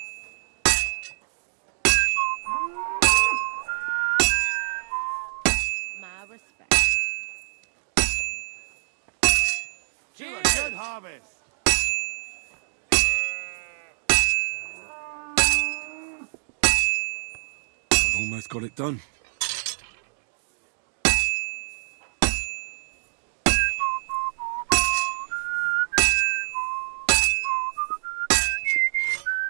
My respect. To a good harvest. I've almost got it done.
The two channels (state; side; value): silent; left; digital silence